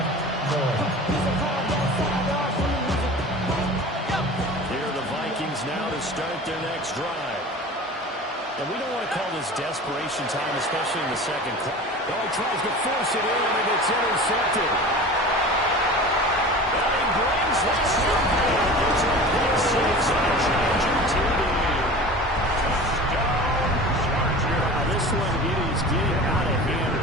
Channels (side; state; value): both; normal; correlation 0.37